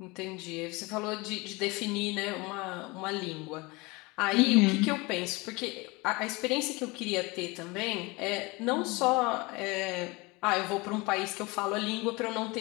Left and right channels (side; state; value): right; quieter; 24.7 dB